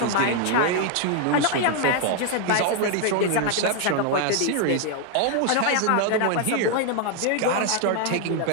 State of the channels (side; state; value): both; different; correlation 0.00